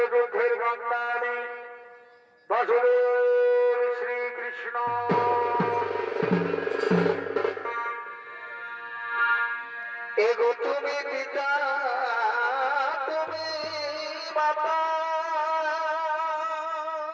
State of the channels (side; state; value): both; identical; correlation 1.00